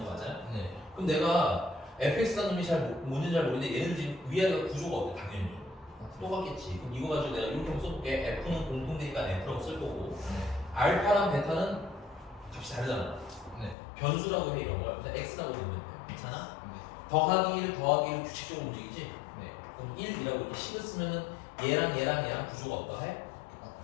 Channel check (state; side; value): drops out; right; at 13.8 s